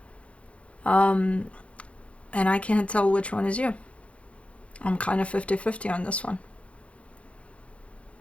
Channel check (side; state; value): right; late; 0.062 ms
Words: And I can't tell which one is you. I'm kind of 50-50 on this one.